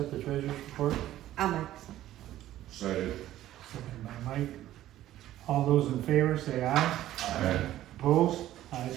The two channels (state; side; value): quieter; left; 13.7 dB